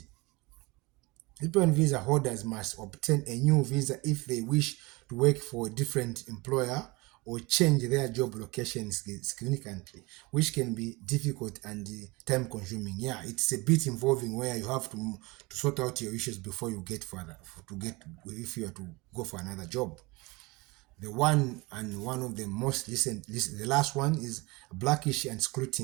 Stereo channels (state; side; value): quieter; left; 24.3 dB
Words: H-1B visa holders must obtain a new visa if they wish to work for a different employer or change their job location significantly, which can be difficult and time consuming. Yeah, it's a bit involving where you have to sort out your issues before you get if you are to go for another job. The one of the most recent, the last one is blackish and